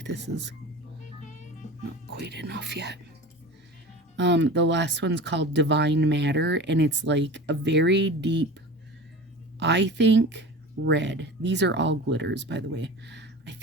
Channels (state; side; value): normal; both; correlation 0.34